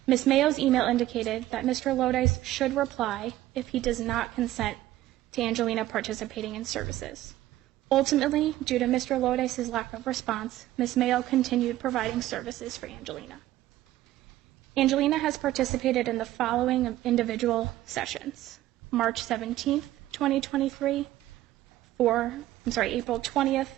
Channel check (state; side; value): quieter; left; 14.7 dB